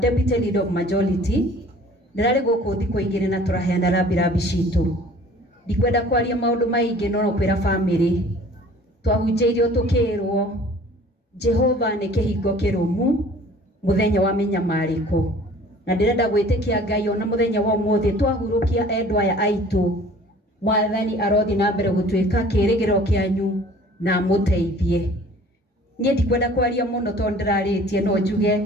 leader of majority. Ndĩrarĩ gũkũ thikũ igĩrĩ na tũraheana rambirambi citũ. Ndikwenda kwaria maũndũ maingĩ no kwĩra family twahunjĩirio tũkĩrwo Jehova nĩ kĩhingo kĩrũmu mũthenya wa mĩnyamarĩko, na ndĩrenda gwĩtĩkia Ngai ona mũthenya wa ũmũthĩ twahurũkia endwa aya aitũ, Mwathani arothi na mbere gũtuĩka kĩĩrĩgĩrĩro kĩanyu na mũteithie. Niĩ ndikwenda kwaria mũno tondũ ndĩrarĩtie, no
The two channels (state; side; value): normal; both; correlation 0.49